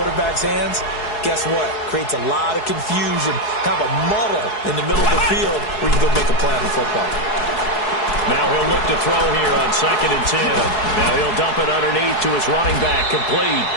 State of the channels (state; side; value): late; right; 4.7 ms